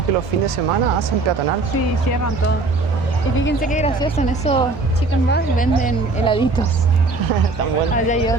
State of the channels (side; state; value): left; quieter; 3.5 dB